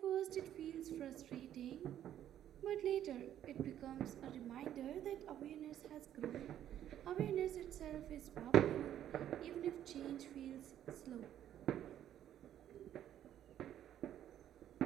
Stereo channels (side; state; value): left; quieter; 11.1 dB